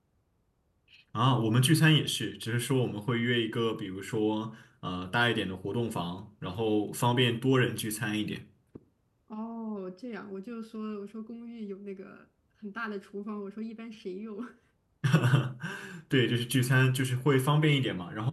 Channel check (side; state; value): both; identical; correlation 1.00